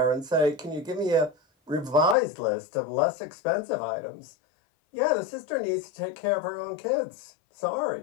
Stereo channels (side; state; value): right; drops out; at 2.1 s